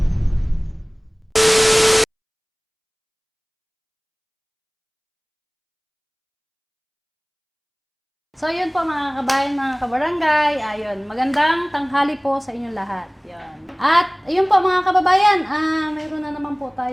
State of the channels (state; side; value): identical; both; correlation 1.00